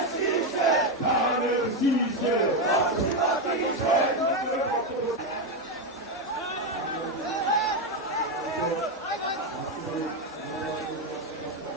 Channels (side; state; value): both; normal; correlation 0.08